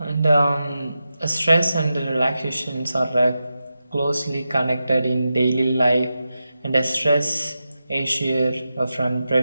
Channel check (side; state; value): both; inverted; correlation -0.90